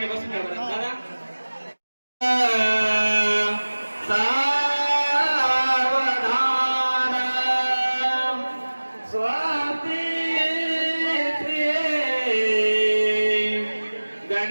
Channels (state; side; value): inverted; both; correlation -1.00